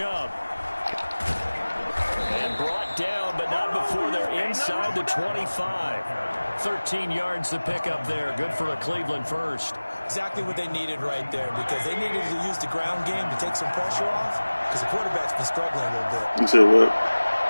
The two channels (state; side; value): inverted; both; correlation -1.00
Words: And brought down, but not before they're inside the 25. 13 yards to pick up there. Good for a Cleveland first. Exactly what they needed right there, because they needed to use the ground game to take some pressure off, because the quarterback's been struggling a little bit. You said what?